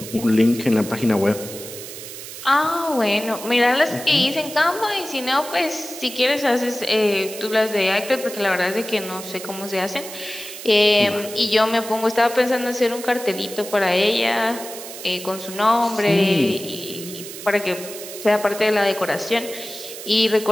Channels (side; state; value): right; noise; hiss, 12 dB below the sound